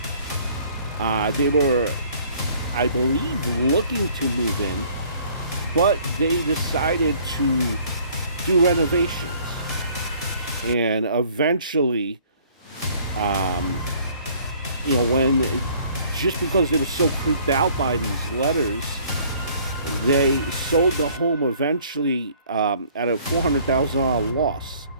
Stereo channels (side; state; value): both; inverted; correlation -0.57